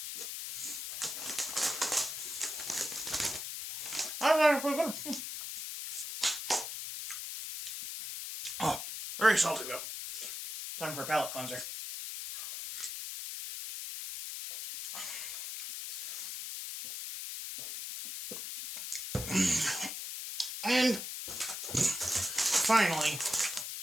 Oh, very salty though. Time for a palate cleanser. And finally,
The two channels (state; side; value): noise; left; hiss, 6 dB below the sound